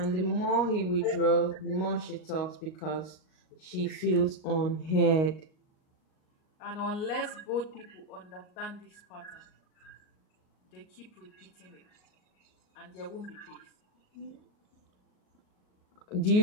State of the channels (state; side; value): late; right; 38 ms